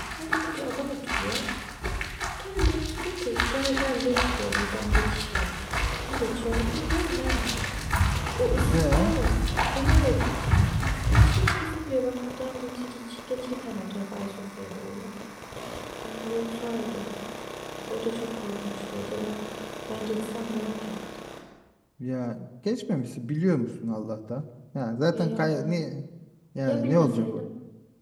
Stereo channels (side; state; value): both; identical; correlation 1.00